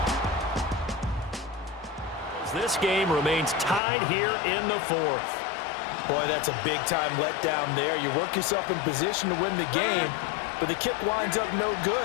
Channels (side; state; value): right; drops out; at 3.8 s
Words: This game remains tied here in the 4th. Boy, that's a big-time letdown there. You work yourself in position to win the game, but the kick winds up no